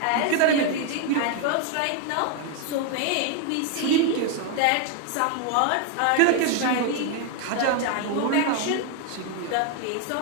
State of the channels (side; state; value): both; different; correlation 0.01